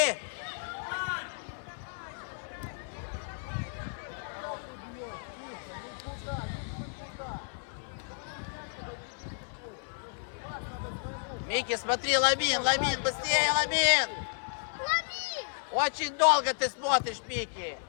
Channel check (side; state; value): right; silent; 56 dB below the other